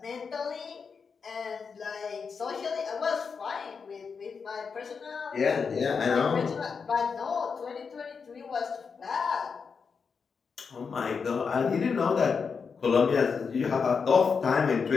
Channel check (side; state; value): right; quieter; 5.6 dB